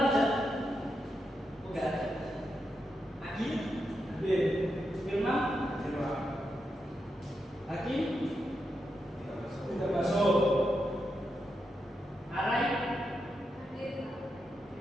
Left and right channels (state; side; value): normal; both; correlation 0.85